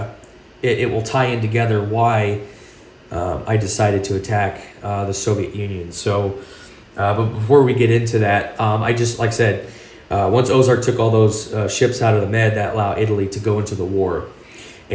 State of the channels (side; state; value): both; identical; correlation 1.00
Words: it will tie in together why I decided to attack the Soviet Union. So, but before we get into that, I just, like I said, once Ozark took all those ships out of the Med, that allowed Italy to go into the war